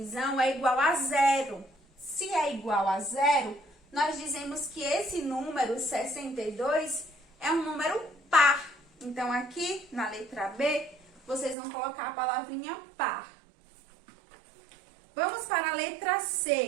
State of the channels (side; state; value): left; drops out; at 11.6 s